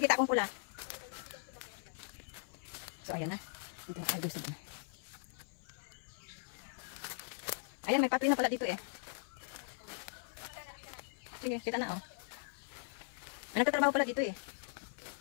akong pula. So, ayan na. Ito yung gusto na. Ayan, may pathway na pala dito eh. Sige, kita na oh. May nagtatrabaho pala dito eh.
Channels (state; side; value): silent; right; 51 dB below the other